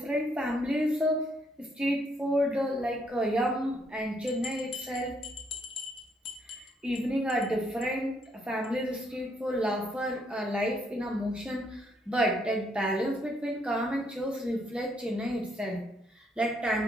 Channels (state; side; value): normal; both; correlation 0.72